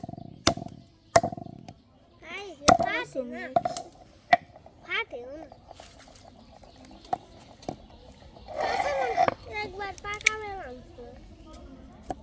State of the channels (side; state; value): both; identical; correlation 1.00